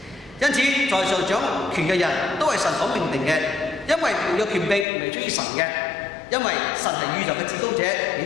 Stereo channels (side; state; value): right; drops out; at 4.9 s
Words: 因此在上掌權嘅人都係神所命定嘅，因為沒有權柄唔係出於神嘅，因為神係宇宙嘅至高者，亦